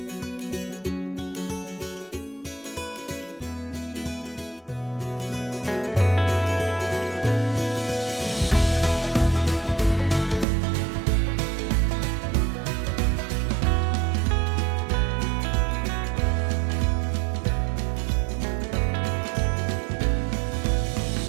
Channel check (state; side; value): drops out; left; at 10.5 s